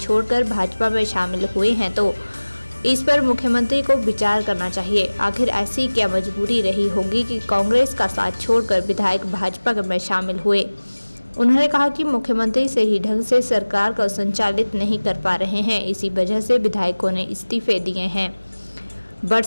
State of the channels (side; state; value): both; inverted; correlation -1.00